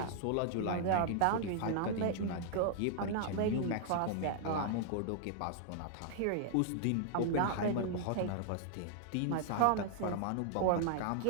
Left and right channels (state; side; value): different; both; correlation 0.00